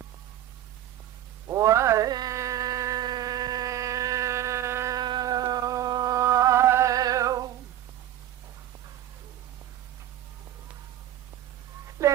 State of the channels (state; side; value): quieter; left; 12.4 dB